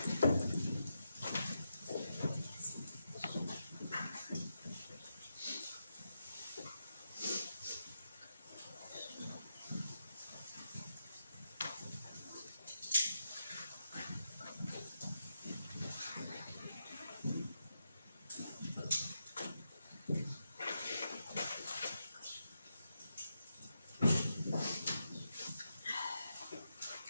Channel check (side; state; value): both; inverted; correlation -0.85